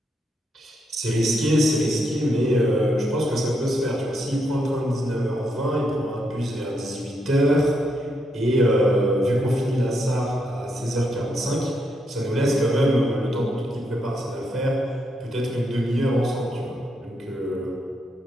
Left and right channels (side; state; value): both; normal; correlation 0.79